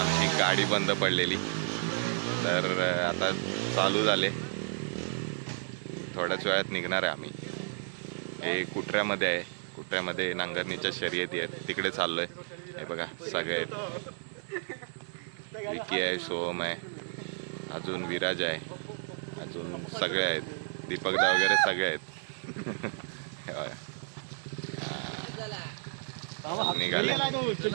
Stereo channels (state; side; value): silent; left; digital silence